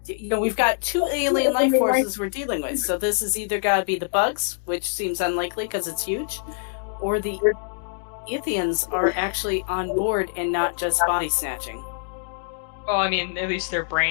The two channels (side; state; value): right; silent; digital silence